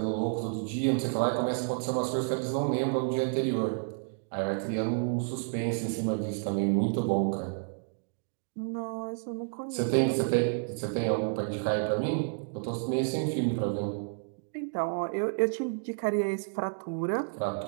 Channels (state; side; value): silent; left; digital silence